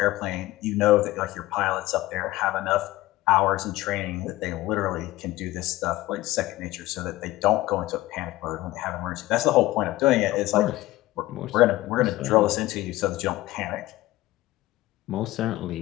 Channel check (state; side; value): quieter; right; 17.5 dB